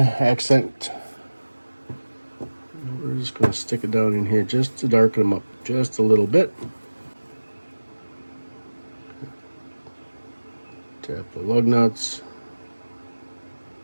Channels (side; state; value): both; inverted; correlation -1.00